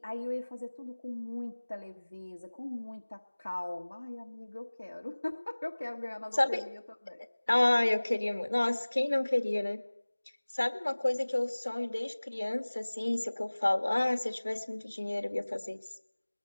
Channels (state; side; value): inverted; both; correlation -1.00